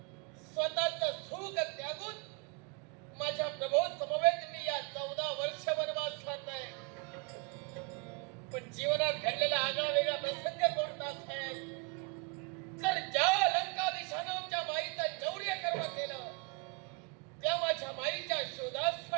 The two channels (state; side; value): quieter; left; 32.1 dB